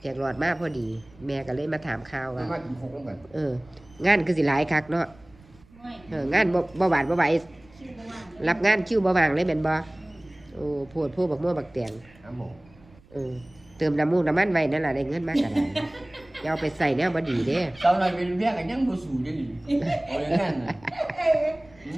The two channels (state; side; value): noise; right; rumble, 26 dB below the sound